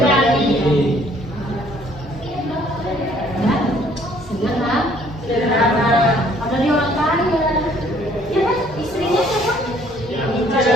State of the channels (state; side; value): normal; both; correlation 0.61